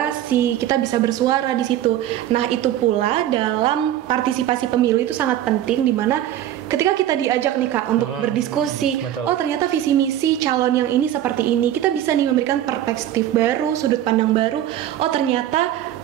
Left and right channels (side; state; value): left; quieter; 12.1 dB